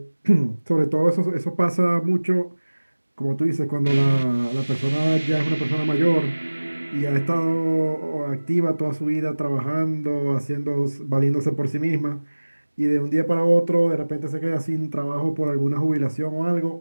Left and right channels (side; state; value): both; inverted; correlation -1.00